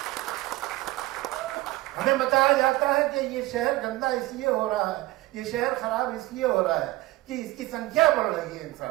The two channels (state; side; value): quieter; left; 18.5 dB